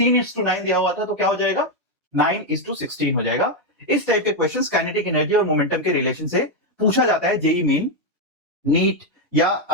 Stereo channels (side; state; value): both; normal; correlation 0.03